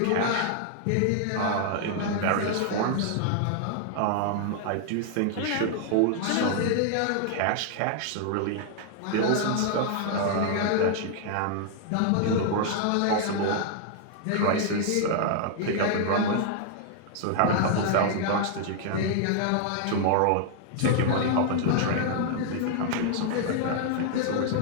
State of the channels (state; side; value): different; both; correlation -0.01